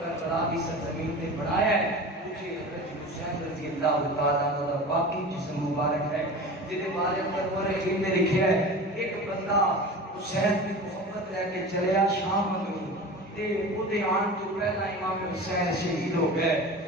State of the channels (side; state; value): both; normal; correlation 0.33